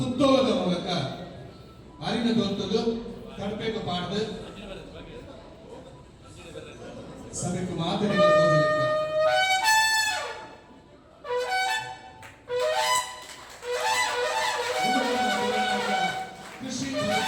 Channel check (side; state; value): both; identical; correlation 1.00